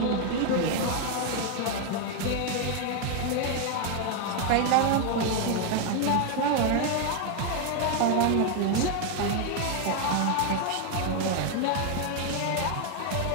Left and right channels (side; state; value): both; different; correlation 0.01